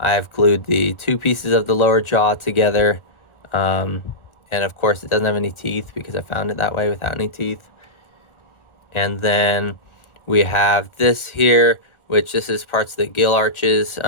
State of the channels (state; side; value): late; right; 1.4 ms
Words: glued the 2 pieces of the lower jaw together, and of course it doesn't have any teeth because I found it that way without any teeth. And then we have this here, which this is parts of the gill arches,